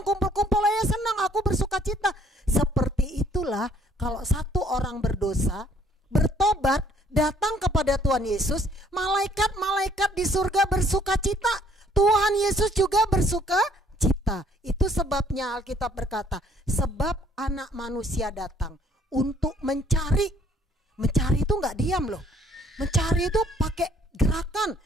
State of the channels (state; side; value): normal; both; correlation 0.62